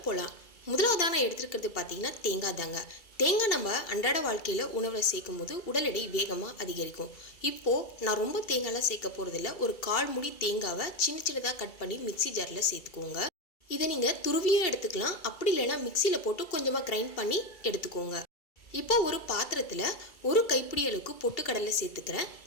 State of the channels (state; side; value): late; right; 2.3 ms